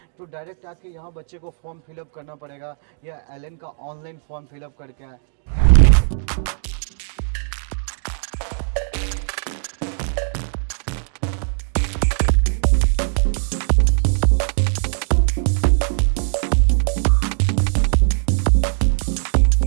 तो डायरेक्ट आके यहाँ बच्चे को फॉर्म फिलअप करना पड़ेगा या एलन का ऑनलाइन फॉर्म फिलअप करके आए?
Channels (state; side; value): silent; left; digital silence